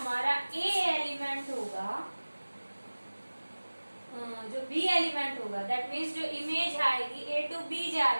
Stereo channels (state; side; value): inverted; both; correlation -1.00